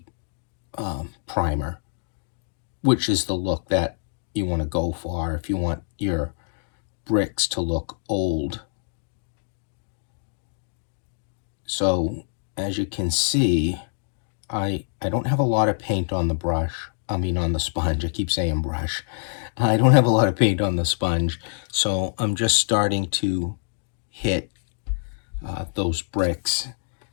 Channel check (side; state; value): right; silent; digital silence